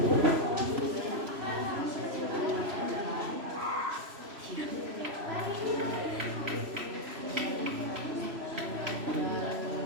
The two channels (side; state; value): left; late; 3.0 ms